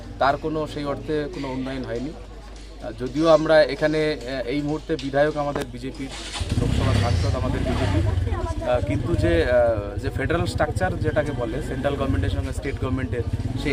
তার কোনো সেই অর্থে কোনো উন্নয়ন হয়নি। যদিও আমরা এখানে এই মুহূর্তে বিধায়ক আমাদের বিজেপির, লোকসভা সাংসদ আমাদের বিজেপি, কিন্তু যে ফেডারেল স্ট্রাকচার যেটাকে বলে সেন্ট্রাল গভর্নমেন্টের সঙ্গে স্টেট গভর্নমেন্টের,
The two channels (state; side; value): identical; both; correlation 1.00